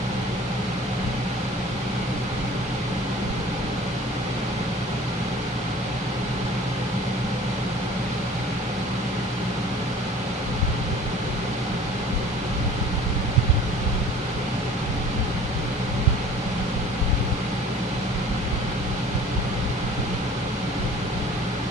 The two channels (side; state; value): both; normal; correlation 0.47